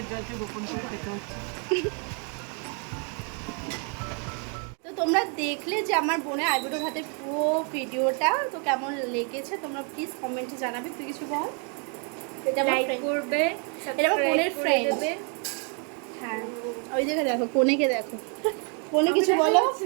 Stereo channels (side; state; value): left; quieter; 38.5 dB